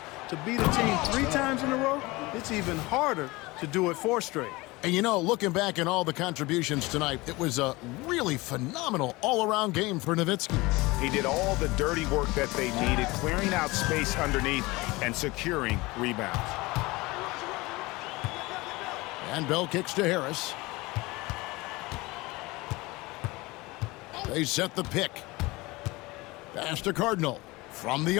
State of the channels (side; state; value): right; quieter; 22.2 dB